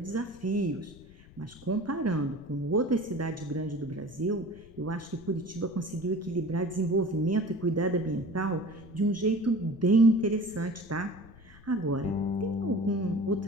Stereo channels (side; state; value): left; noise; rumble, 22 dB below the sound